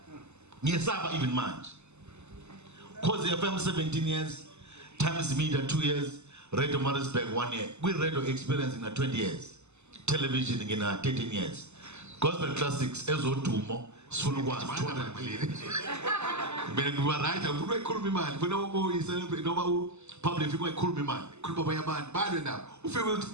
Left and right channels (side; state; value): left; late; 0.82 ms